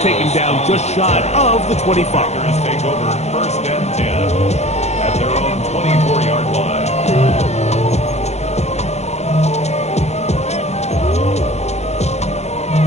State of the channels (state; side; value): late; right; 0.32 ms